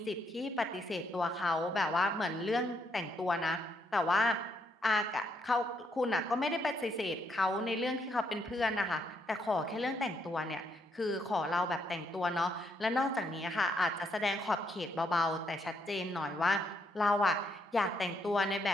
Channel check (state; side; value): normal; both; correlation 0.75